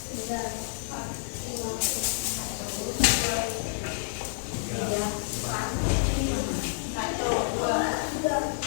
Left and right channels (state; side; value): silent; right; 56 dB below the other